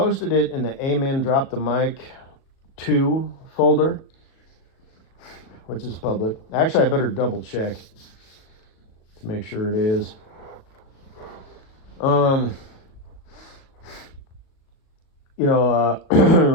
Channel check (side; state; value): right; late; 37 ms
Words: it in the Amen Drop the Mic 2 folder, which is public. Actually, I better double check to make sure it is. Um,